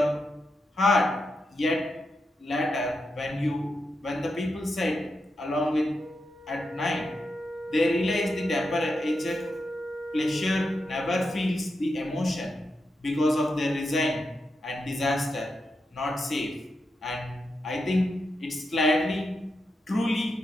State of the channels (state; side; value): normal; both; correlation 0.86